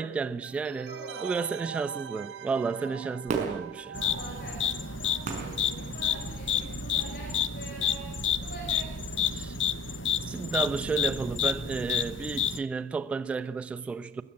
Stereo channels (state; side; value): normal; both; correlation 0.49